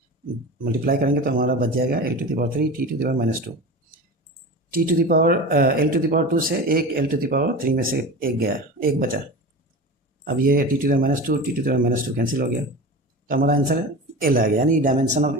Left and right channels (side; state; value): both; normal; correlation 0.31